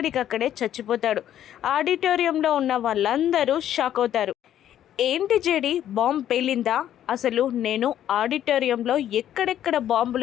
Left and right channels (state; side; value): quieter; right; 11.1 dB